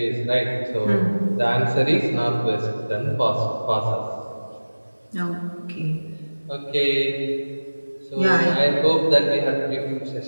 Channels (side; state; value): both; inverted; correlation -1.00